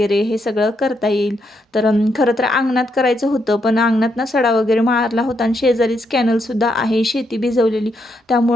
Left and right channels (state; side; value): normal; both; correlation 0.79